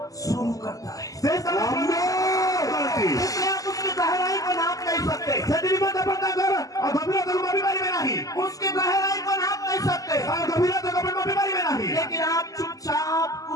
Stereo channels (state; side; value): late; right; 0.17 ms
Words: शुरू करता है। ସେ ସ୍ଥାନରେ କରନ୍ତି इसलिए आप उसकी गहराई को नाप नहीं सकते, ସେଥି ନିମନ୍ତେ ଆପଣ ତାଙ୍କର ଗଭୀରତାକୁ ମାପି ପାରିବେ ନାହିଁ उसकी गहराई को नाप नहीं सकते, ତାର ଗଭୀରତାକୁ ଆପଣ ମାପି ପାରିବେ ନାହିଁ लेकिन आप चुपचाप